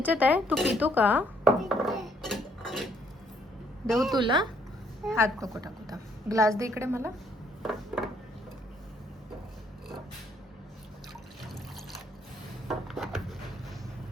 आहे. तू पितो का? देऊ तुला. हात नको टाकू. ग्लास दे इकडे मला.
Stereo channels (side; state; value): both; normal; correlation 0.67